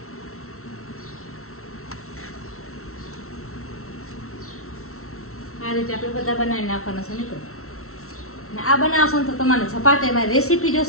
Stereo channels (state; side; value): late; right; 0.63 ms